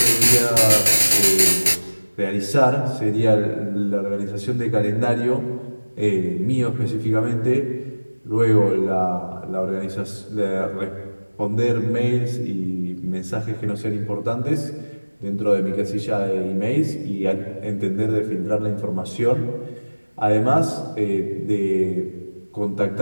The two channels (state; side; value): inverted; both; correlation -1.00